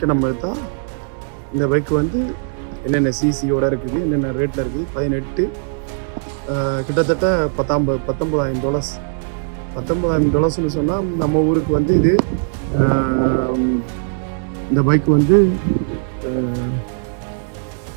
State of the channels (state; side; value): silent; left; digital silence